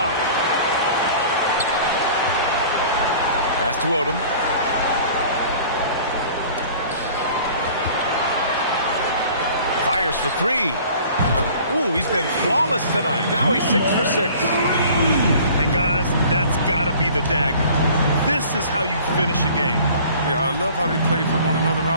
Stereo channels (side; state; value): both; inverted; correlation -0.48